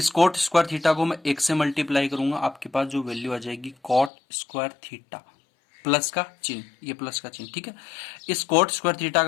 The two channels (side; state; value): right; drops out; at 4.1 s